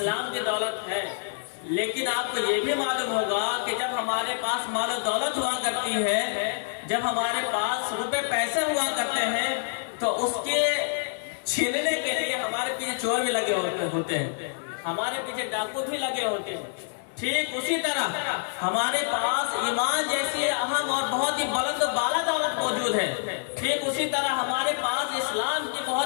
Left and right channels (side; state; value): right; silent; digital silence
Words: کی دولت ہے. لیکن آپ کو یہ بھی معلوم ہوگا کہ جب ہمارے پاس مال و دولت ہوا کرتی ہے، جب ہمارے پاس روپے پیسے ہوا کرتے ہیں تو اس کے چھیننے کے لیے ہمارے پیچھے چور بھی لگے ہوتے ہیں، ہمارے پیچھے ڈاکو بھی لگے ہوتے ہیں. ٹھیک اسی طرح ہمارے پاس ایمان جیسی اہم اور بہت ہی بلند و بالا دولت موجود ہے. ٹھیک اسی طرح ہمارے پاس اسلام کی